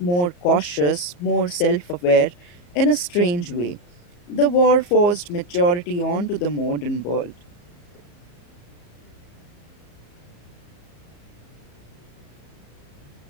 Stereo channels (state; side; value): late; right; 34 ms